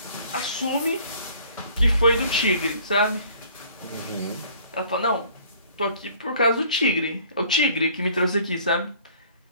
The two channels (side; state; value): both; inverted; correlation -0.55